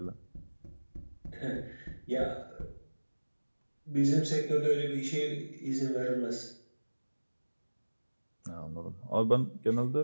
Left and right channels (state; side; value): inverted; both; correlation -1.00